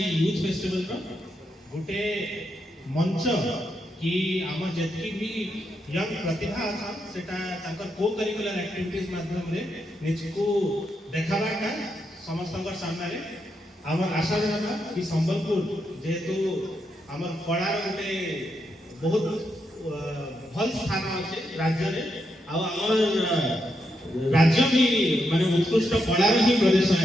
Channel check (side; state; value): both; normal; correlation 0.82